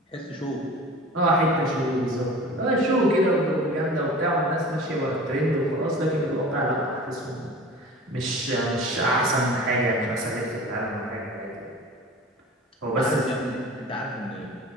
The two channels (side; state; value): both; normal; correlation 0.39